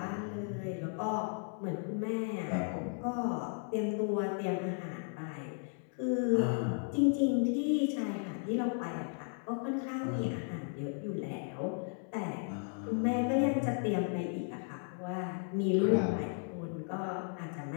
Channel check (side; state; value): right; silent; 54 dB below the other